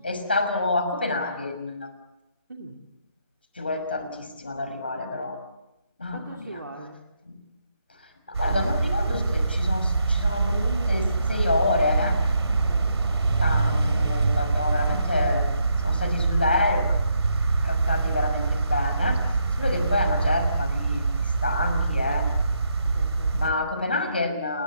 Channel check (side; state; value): both; inverted; correlation -0.77